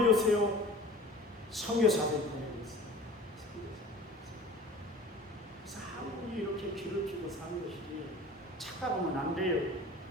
선교사들이 보내줬어요. 그래서 한국이 이렇게 길을 피고 사는 것이 착각하면 안 돼요.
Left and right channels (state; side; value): normal; both; correlation 0.42